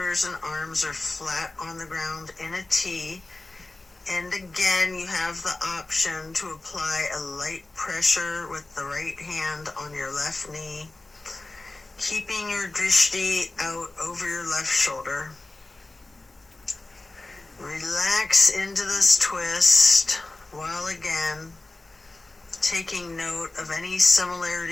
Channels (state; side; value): quieter; right; 3.0 dB